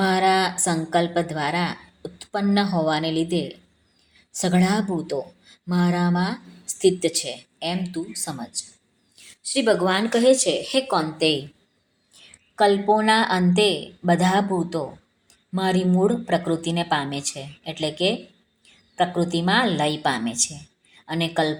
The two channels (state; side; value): identical; both; correlation 1.00